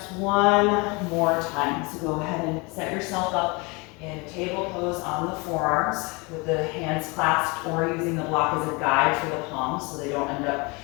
one more time. So go ahead and set yourself up in table pose on the forearms with the hands clasped or using the block as a guide for the palms so they don't end up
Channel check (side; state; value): right; quieter; 27.8 dB